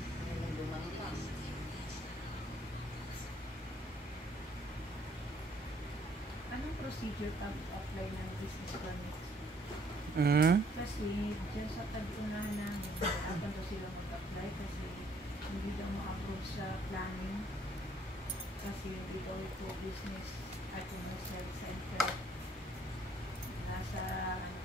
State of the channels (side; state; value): both; normal; correlation 0.64